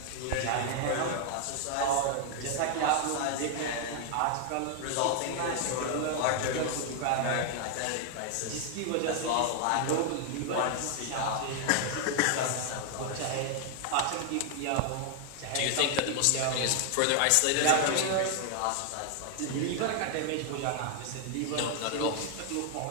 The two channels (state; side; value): different; both; correlation 0.00